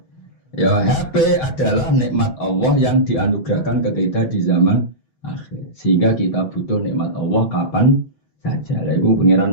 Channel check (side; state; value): right; late; 6.2 ms